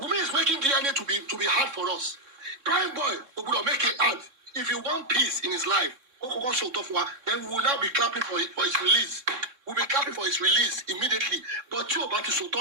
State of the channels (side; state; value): left; late; 3.6 ms